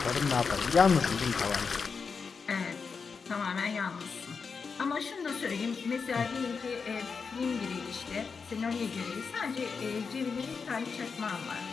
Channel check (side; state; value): right; quieter; 5.3 dB